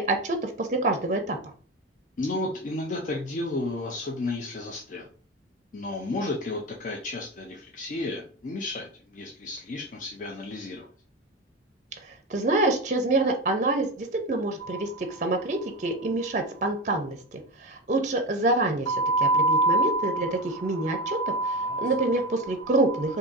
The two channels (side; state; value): both; normal; correlation 0.21